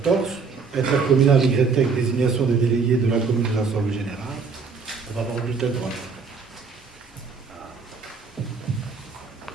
intercommunal YTEC, désignation des délégués de la commune de l'Assemblée générale. On va avoir le bulletin de droite.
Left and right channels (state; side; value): quieter; left; 5.1 dB